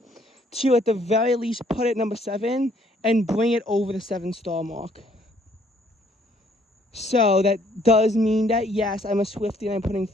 to at the very least put it number 7 and bring it over the 7-star mark. So that does mean that, yes, I'm a Swiftie and I'm putting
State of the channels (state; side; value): normal; both; correlation 0.64